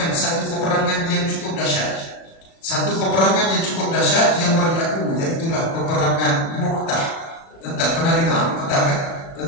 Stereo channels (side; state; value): right; late; 36 ms